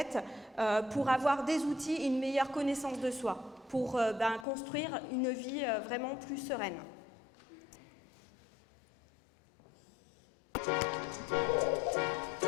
pour avoir des outils et une meilleure connaissance de soi, pour construire une vie vraiment plus sereine.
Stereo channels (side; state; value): right; drops out; at 4.5 s